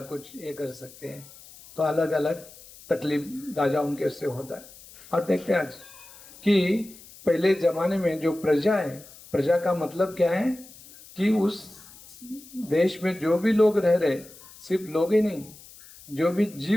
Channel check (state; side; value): noise; left; hiss, 20 dB below the sound